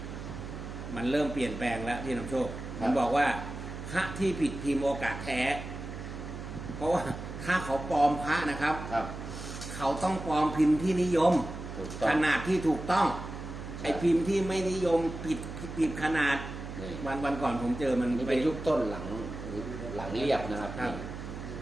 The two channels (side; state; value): right; noise; hum, 9 dB below the sound